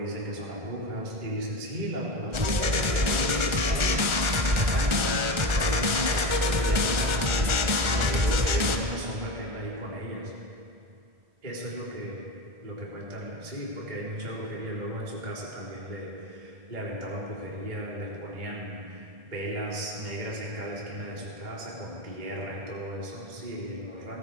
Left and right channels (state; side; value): late; left; 1.4 ms